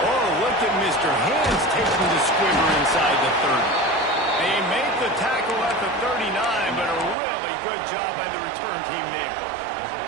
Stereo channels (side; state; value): left; drops out; at 7.2 s